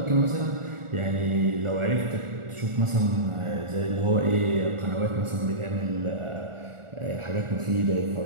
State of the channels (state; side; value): late; left; 1.4 ms